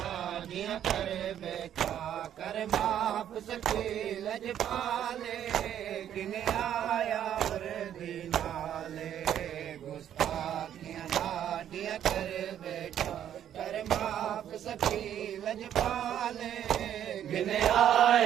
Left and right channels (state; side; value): quieter; left; 10.3 dB